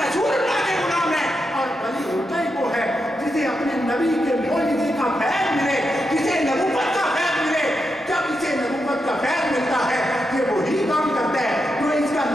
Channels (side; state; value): both; normal; correlation 0.86